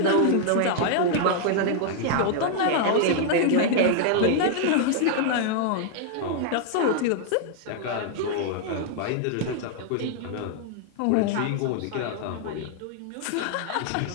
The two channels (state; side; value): different; both; correlation 0.00